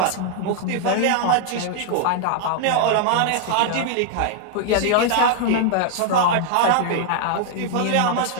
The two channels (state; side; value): different; both; correlation 0.00